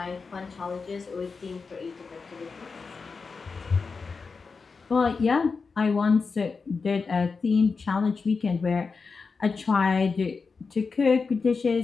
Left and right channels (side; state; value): right; quieter; 4.7 dB